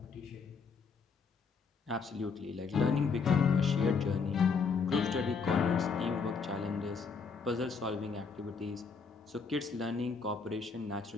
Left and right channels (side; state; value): right; quieter; 5.2 dB